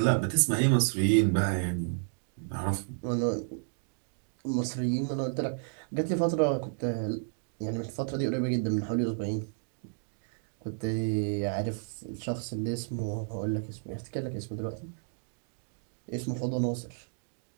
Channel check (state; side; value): silent; left; digital silence